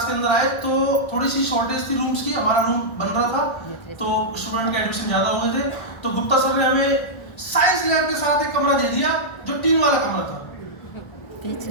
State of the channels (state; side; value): late; right; 1.3 ms